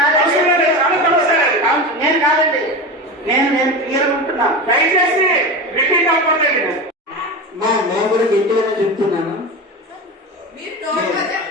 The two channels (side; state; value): both; normal; correlation 0.24